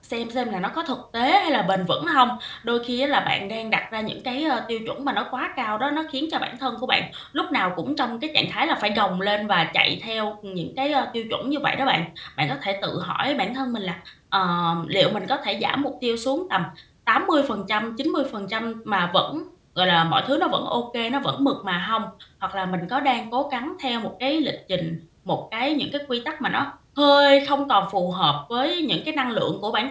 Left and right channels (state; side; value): identical; both; correlation 1.00